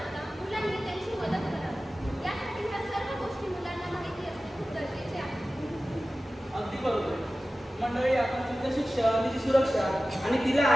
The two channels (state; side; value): normal; both; correlation 0.96